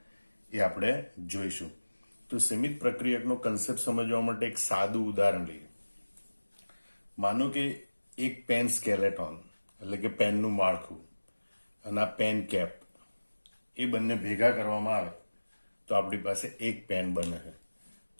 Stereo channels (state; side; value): inverted; both; correlation -1.00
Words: એ આપણે જોઈશું. તો સીમિત પ્રક્રિયકનો કન્સેપ્ટ સમજવા માટે એક સાદું ઉદાહરણ લઈએ. માનો કે એક પેન સ્કેલેટોન એટલે કે પેનનું માળખું અને આ પેન કેપ એ બંને ભેગા કરવામાં આવે તો આપણી પાસે એક પેન બને છે.